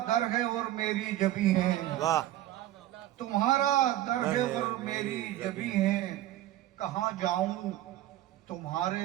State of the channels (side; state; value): left; quieter; 14.2 dB